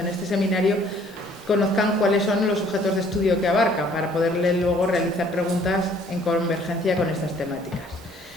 este seminario, conozcan cuáles son los objetos de estudio que abarca para poderle luego realizar preguntas en convergencia con estas temáticas.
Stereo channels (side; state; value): both; normal; correlation 0.59